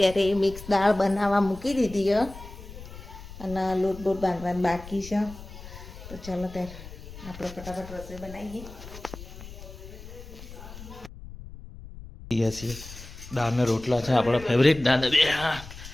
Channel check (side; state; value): left; noise; rumble, 14 dB below the sound